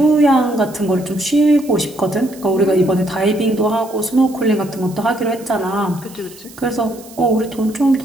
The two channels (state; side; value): noise; right; hiss, 21 dB below the sound